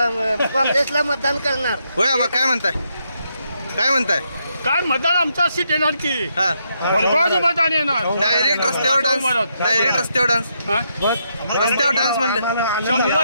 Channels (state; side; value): inverted; both; correlation -0.79